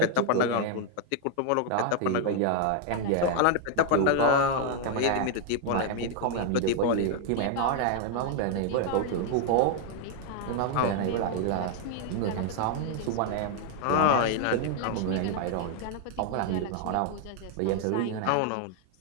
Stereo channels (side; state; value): both; different; correlation 0.00